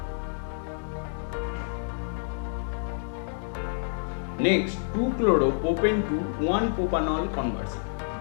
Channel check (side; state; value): right; silent; digital silence